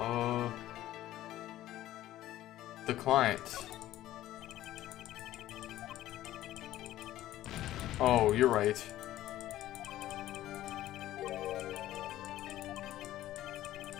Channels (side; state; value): right; quieter; 14.2 dB